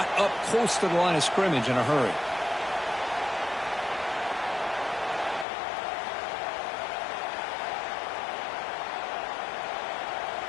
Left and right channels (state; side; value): drops out; right; at 5.5 s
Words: up close to the line of scrimmage in a hurry.